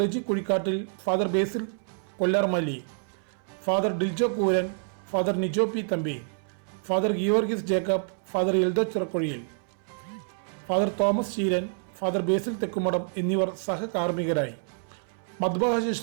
Riji Kuzhikattil, father Basil Kollarmalli, father Diljo Kooran, father Nijo P Thampi, father Giorgis Jacob, father Eldho Chirakkuzhiyil, father Thomas Cheeran, father Basil Thekkumadam എന്നിവർ സഹകാർമ്മികരായി. മദ്ബഹ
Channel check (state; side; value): silent; left; 60 dB below the other